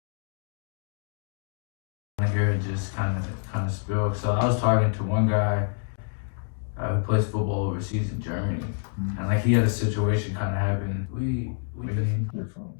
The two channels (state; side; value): silent; right; digital silence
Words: here and just kind of spill. So I was talking to one guy who plays football overseas in Germany, and like he had a situation kind of happen.